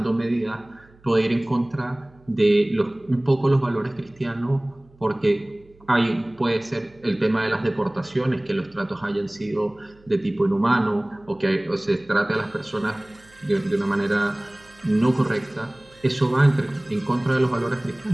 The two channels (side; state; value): right; noise; hum, 28 dB below the sound